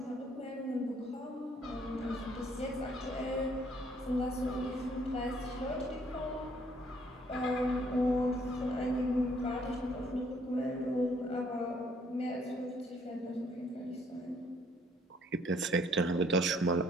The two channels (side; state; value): both; normal; correlation 0.64